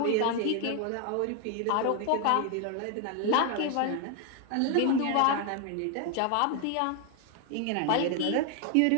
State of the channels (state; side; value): different; both; correlation 0.01